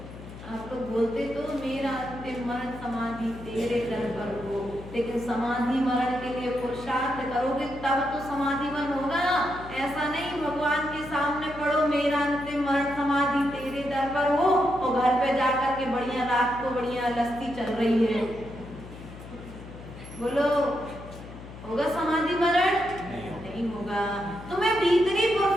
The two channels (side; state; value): left; noise; hum, 14 dB below the sound